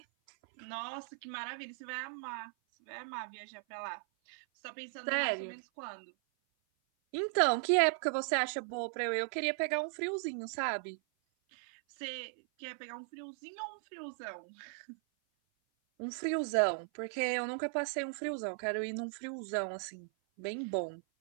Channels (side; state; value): left; silent; 53 dB below the other